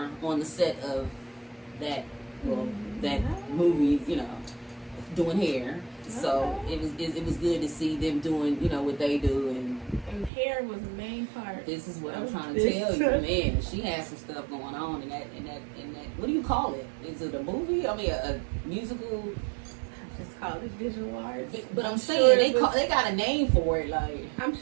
on the set of that movie, you know, doing hair. So Okay. it was good to see them doing, you know, what they do, and hair was the main part. this is what I'm trying to This- tell you, man. She has some stuff going on in that. What do you call it? Is it a movie? I mean, a musical. Just call it visual arts. But I'm sure saying it was- they got a name for it, like. I'm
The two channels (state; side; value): drops out; left; at 10.3 s